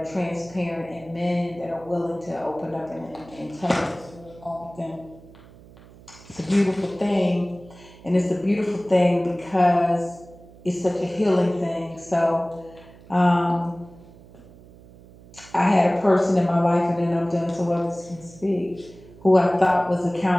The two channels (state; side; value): noise; right; hum, 22 dB below the sound